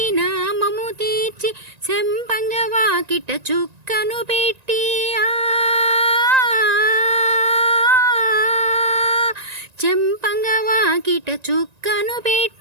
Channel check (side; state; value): left; late; 1.9 ms